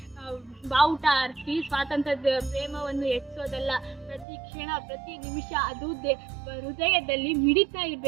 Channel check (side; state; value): left; drops out; at 4.2 s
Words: ಬಾವುಟ ಹಾರಿಸಿ ಸ್ವಾತಂತ್ರ್ಯದ ಪ್ರೇಮವನ್ನು ಹೆಚ್ಚೋದಲ್ಲ. ಪ್ರತಿ ಕ್ಷಣ, ಪ್ರತಿ ನಿಮಿಷ ಅದು ಹೃದಯದಲ್ಲಿ ಮಿಡಿತಾ